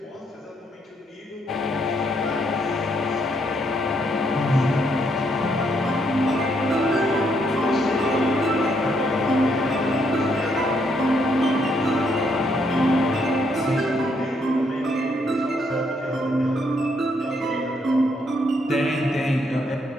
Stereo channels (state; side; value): normal; both; correlation 0.73